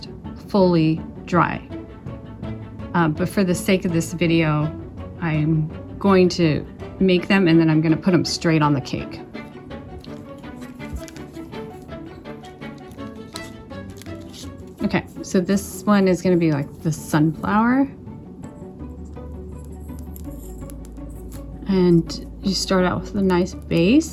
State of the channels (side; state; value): both; identical; correlation 1.00